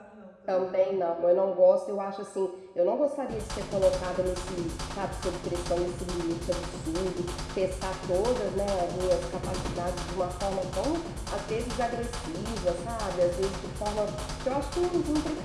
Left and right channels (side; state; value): both; identical; correlation 1.00